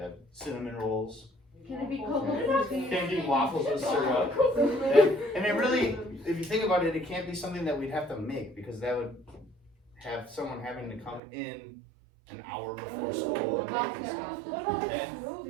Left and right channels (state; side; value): drops out; left; at 11.2 s